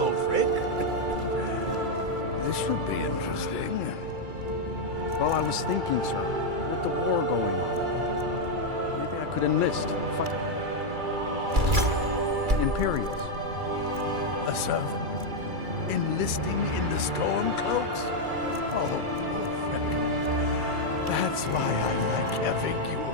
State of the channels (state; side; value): late; left; 2.3 ms